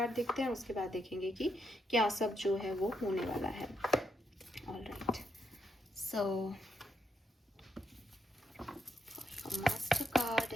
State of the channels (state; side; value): normal; both; correlation 0.79